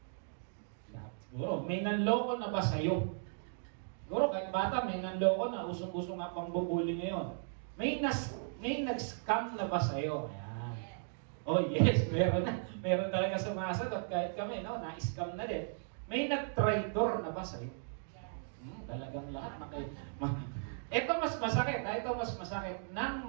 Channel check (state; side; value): silent; left; digital silence